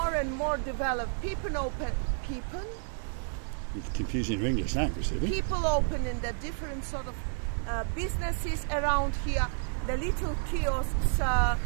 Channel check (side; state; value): left; silent; 57 dB below the other